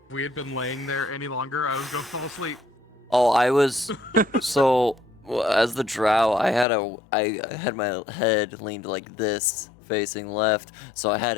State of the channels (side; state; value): right; drops out; at 6.7 s